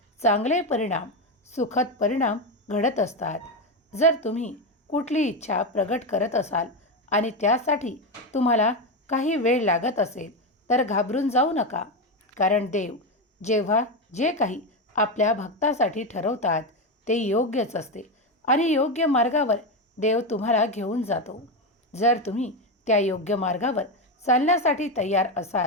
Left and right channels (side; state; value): both; normal; correlation 0.12